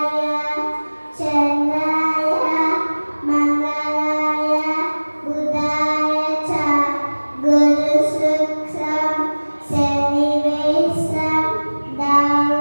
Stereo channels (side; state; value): both; inverted; correlation -1.00